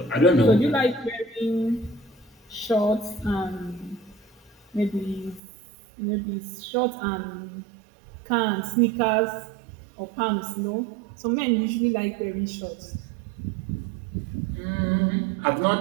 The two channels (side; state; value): left; drops out; at 5.4 s